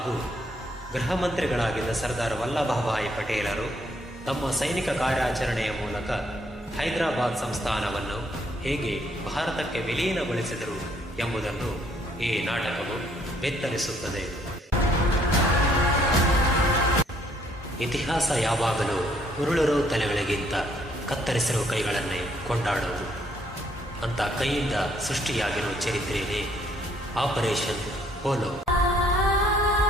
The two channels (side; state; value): both; normal; correlation 0.67